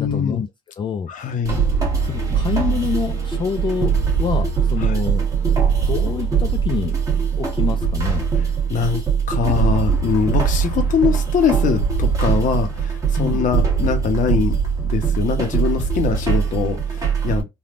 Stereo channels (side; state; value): both; normal; correlation 0.54